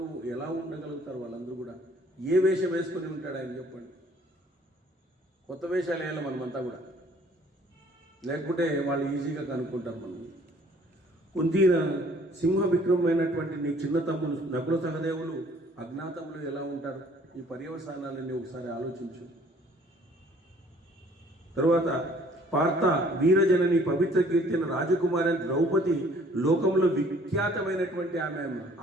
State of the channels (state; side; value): normal; both; correlation 0.57